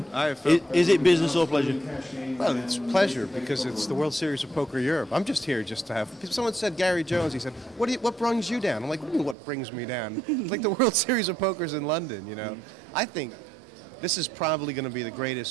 Hi, Phil. Is it business or pleasure? Well, it's pleasure because it's the World Series of Poker Europe. I'm just here just to have... Someone said Gary Jones, he said, what brings you down? I'm like, what do you mean what brings me down? It's like the World Series of Poker's in London, you know? I think this is probably going to be the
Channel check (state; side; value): drops out; left; at 9.3 s